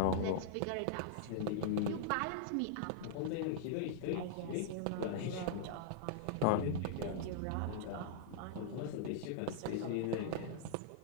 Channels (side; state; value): both; different; correlation -0.01